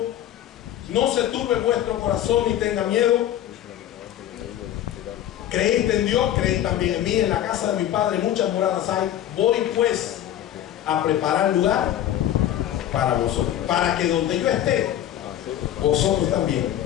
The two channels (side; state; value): right; quieter; 11.7 dB